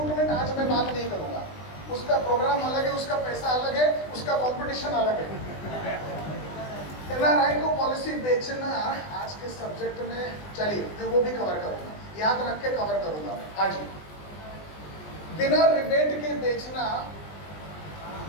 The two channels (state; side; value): late; right; 20 ms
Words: आज मैं बात नहीं करूंगा, उसका प्रोग्राम अलग है, उसका पैसा अलग है, उसका कंपटीशन अलग है। एनआरआई को पॉलिसी बेचना आज के सब्जेक्ट में, चलिए मैं वो भी कवर करूंगा, याद रख के कवर करूंगा मैं। हाँ जी, बिना रिबेट के बेचना